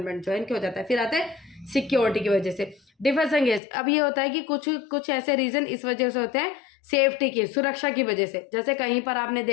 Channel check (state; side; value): drops out; right; at 3.6 s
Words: जो है इनके हो जाता है। फिर आता है सिक्योरिटी की वजह से डिफरेंस एंगेज। अब ये होता है कि कुछ कुछ ऐसे रीजन इस वजह से होते हैं, सेफ्टी की, सुरक्षा की वजह से। जैसे कहीं पर आपने